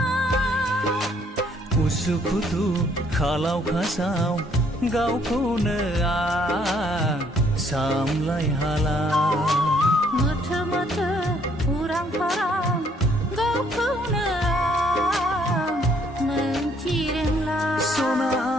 उसुखुथु खालाव खासाव गावखौनो आं सामलाय हाला मोथो मोथो उरां फारां गावखौनो आं मोनथि रोंला सना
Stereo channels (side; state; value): both; normal; correlation 0.66